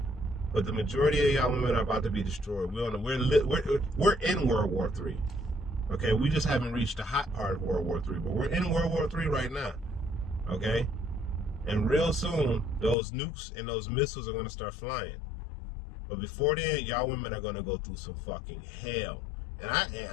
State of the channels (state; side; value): drops out; right; at 13.0 s